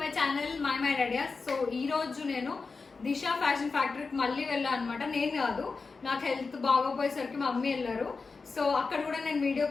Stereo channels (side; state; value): right; quieter; 4.4 dB